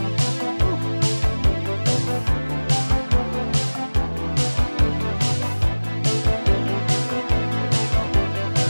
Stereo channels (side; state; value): both; inverted; correlation -1.00